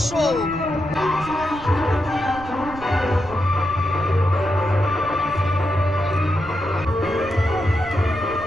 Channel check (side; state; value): right; noise; rumble, 15 dB below the sound